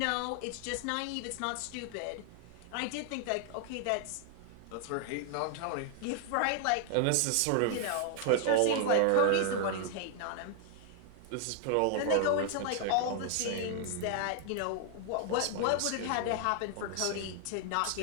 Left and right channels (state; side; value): different; both; correlation 0.00